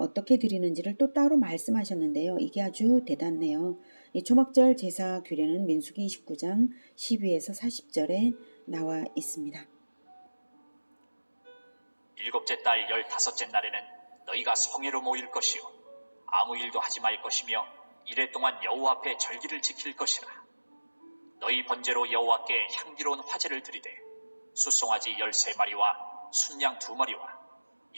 드리는지를 또 따로 말씀하셨는데요. 이게 아주 대단해요. 이 초막절 제사 규례는 민수기 29장 12에서 40절에 나와 있습니다. 일곱째 달 15째 날에는 너희가 성회로 모일 것이요 아무 일도 하지 말 것이며 이래 동안 여호와 앞에 절기를 지킬 것이라. 너희 번제로 여호와께 향기로운 화제를 드리되 숫송아지 13마리와 순양 2마리와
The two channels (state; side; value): inverted; both; correlation -1.00